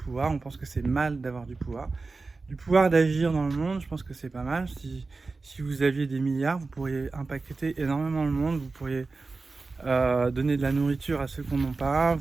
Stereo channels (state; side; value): quieter; left; 3.9 dB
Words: On pense que c'est mal d'avoir du pouvoir. Du pouvoir d'agir dans le monde, je pense que c'est pas mal. Si vous aviez des milliards, vous pourriez impacter énormément le monde. Vous pourriez donner de la nourriture à ceux qui n'en ont pas.